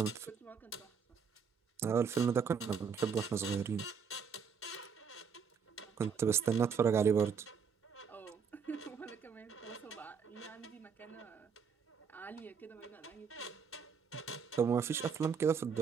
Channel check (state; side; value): quieter; left; 6.3 dB